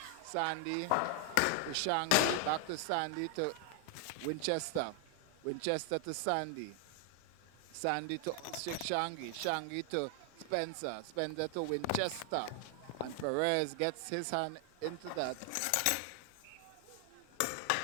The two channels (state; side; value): different; both; correlation 0.00